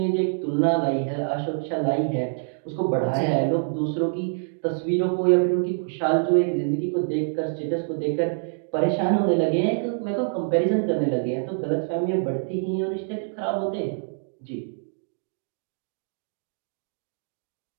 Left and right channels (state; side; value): silent; left; digital silence